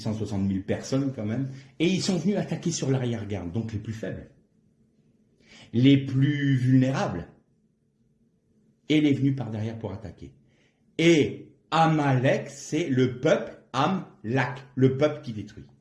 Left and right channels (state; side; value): identical; both; correlation 1.00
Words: 000 personnes quand même, et ils sont venus attaquer sur l'arrière-garde, donc les plus faibles, les plus vulnérables, et les venus par derrière pour attaquer. Et Amalek, c'est le peuple Amlak, le peuple qui détruit.